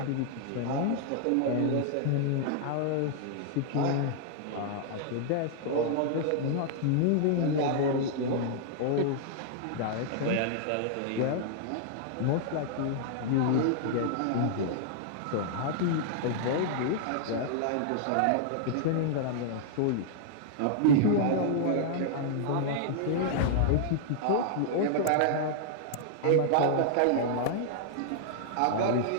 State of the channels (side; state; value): both; different; correlation -0.01